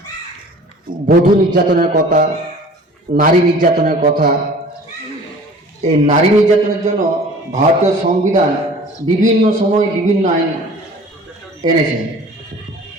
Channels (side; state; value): both; normal; correlation 0.46